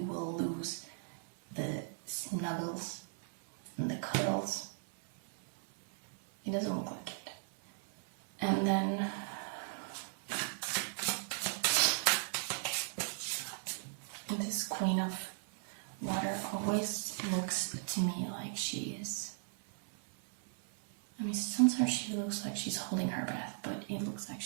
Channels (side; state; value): left; silent; 53 dB below the other